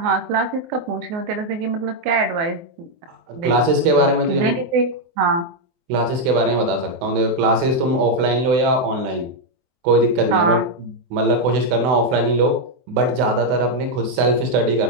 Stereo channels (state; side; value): late; left; 24 ms